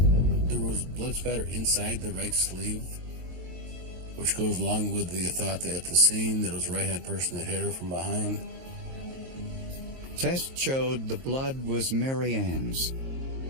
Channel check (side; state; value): left; late; 23 ms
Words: There was blood spatter inside the right sleeve, which goes along with the thought that at the scene that it was a right-hand person that hit her from behind. Tests showed the blood was Mary Ann's.